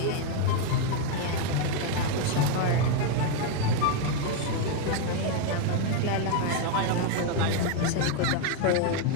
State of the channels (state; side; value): different; both; correlation 0.01